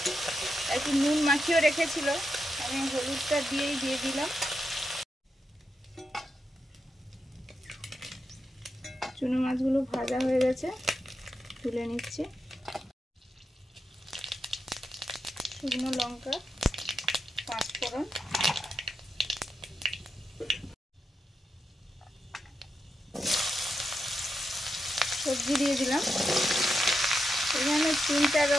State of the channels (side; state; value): both; normal; correlation 0.86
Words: একটু নুন মাখিয়েও রেখেছিল, আমি হলুদটা দিয়ে দিলাম। চুনো মাছগুলো ভাজা হয়ে গেছে, তুলে নিচ্ছি। শুকনো লঙ্কা, পাঁচফোড়ন, সবজি দিয়ে দিলাম। এখানে 3-4